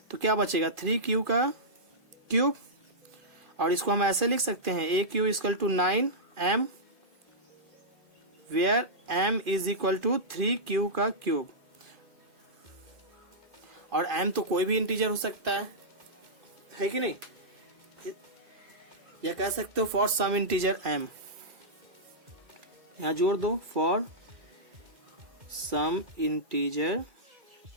तो क्या बचेगा 3q का क्यूब, और इसको हम ऐसे लिख सकते हैं AQ equal to 9m, where m is equal to 3q का क्यूब। और m तो कोई भी इंटीजर हो सकता है कि नहीं, या कह सकते हो फॉर सम इंटीजर m, यहां जोड़ दो फॉर सम इंटीजर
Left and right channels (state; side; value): late; left; 2.4 ms